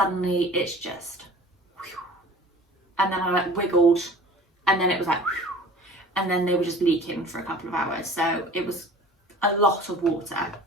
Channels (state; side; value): normal; both; correlation 0.44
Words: it's just, and then I like wiggled and then it was like, and then they were just leaking for a couple of hours. So it was a lot of water.